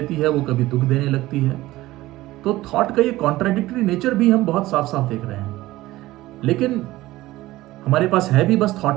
है वो कभी दुख देने लगती है। तो थॉट का ये कॉन्ट्राडिक्टरी नेचर भी हम बहुत साफ साफ देख रहे हैं। लेकिन हमारे पास है भी बस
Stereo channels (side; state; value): left; quieter; 17.3 dB